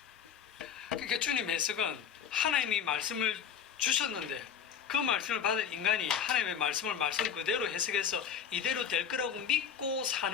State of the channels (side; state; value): right; quieter; 8.0 dB